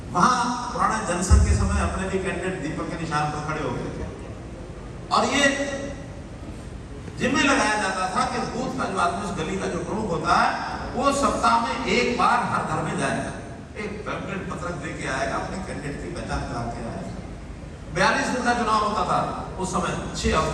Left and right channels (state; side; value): identical; both; correlation 1.00